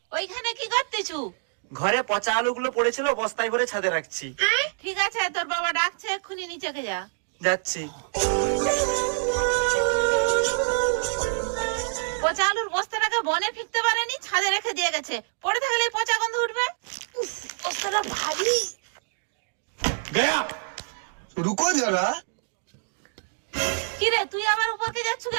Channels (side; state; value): left; silent; 61 dB below the other